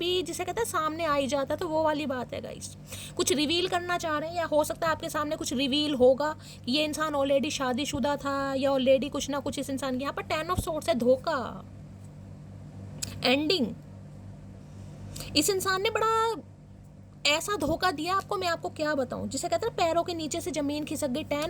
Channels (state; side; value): identical; both; correlation 1.00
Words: जिसे कहते हैं सामने आ ही जाता है, तो वो वाली बात है गाइस। कुछ रिवील करना चाह रहे हैं, या हो सकता है आपके सामने कुछ रिवील होगा कि ये इंसान ऑलरेडी शादीशुदा था, या ऑलरेडी कुछ ना कुछ इस इंसान की। यहाँ पर 10 ऑफ सोर्ड्स है, धोखा, एंडिंग। इस इंसान ने बड़ा ऐसा धोखा दिया आपको, मैं आपको क्या बताऊं, जिसे कहते हैं पैरों के नीचे से जमीन खिसक गई।